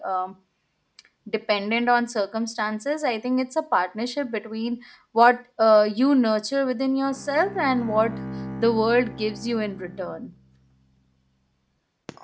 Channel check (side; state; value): both; identical; correlation 1.00